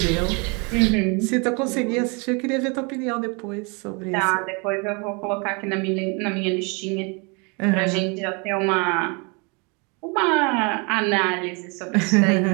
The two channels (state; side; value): quieter; left; 32.0 dB